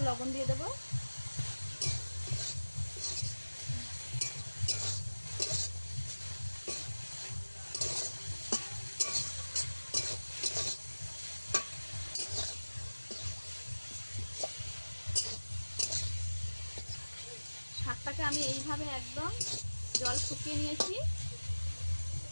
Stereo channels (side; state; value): both; inverted; correlation -1.00